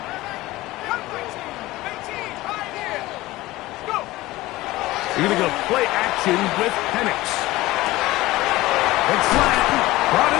Cougar 19. 18. Right here. Let's go. You're going to go play action with Penix. It's flat, brought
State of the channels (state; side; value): quieter; right; 18.3 dB